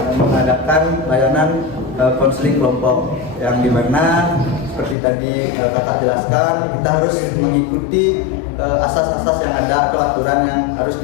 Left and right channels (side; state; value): right; drops out; at 5.0 s